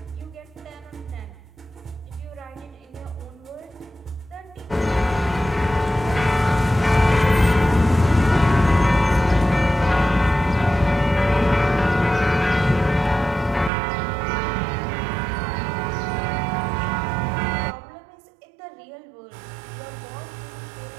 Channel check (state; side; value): drops out; left; at 13.7 s